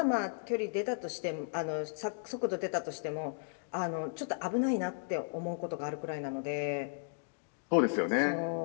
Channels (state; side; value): silent; right; digital silence